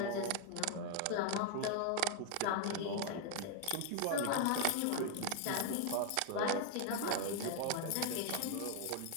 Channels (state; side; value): different; both; correlation 0.00